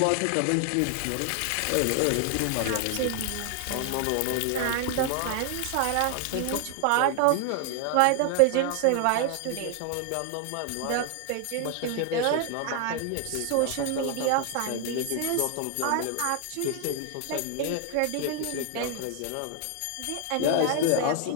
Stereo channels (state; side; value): different; both; correlation 0.00